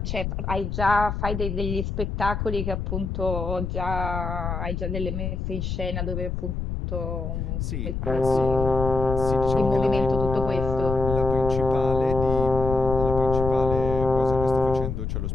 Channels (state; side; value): noise; left; rumble, 3 dB below the sound